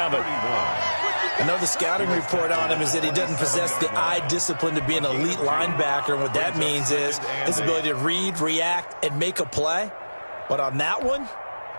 I know the scouting report on him is that he doesn't possess the eye discipline to be an elite linebacker. And what that means is his ability to read, react, and make a play. But on that one,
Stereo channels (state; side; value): inverted; both; correlation -1.00